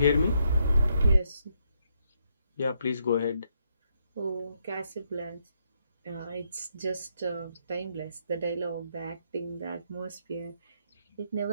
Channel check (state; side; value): inverted; both; correlation -0.76